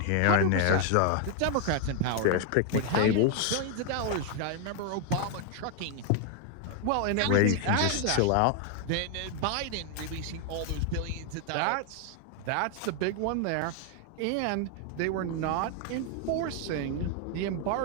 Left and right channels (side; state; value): both; different; correlation 0.00